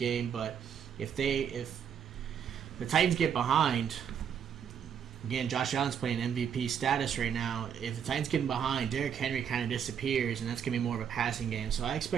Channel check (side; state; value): left; quieter; 8.1 dB